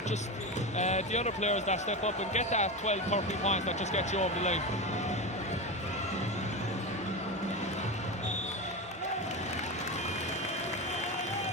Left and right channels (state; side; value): normal; both; correlation 0.19